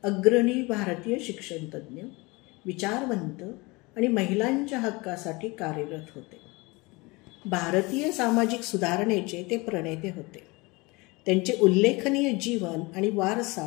अग्रणी भारतीय शिक्षणतज्ज्ञ, विचारवंत आणि महिलांच्या हक्कासाठी कार्यरत होते. भारतीय सामाजिक सुधारणेचे ते प्रणेते होते. त्यांचे उल्लेखनीय जीवन आणि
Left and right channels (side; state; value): right; quieter; 24.8 dB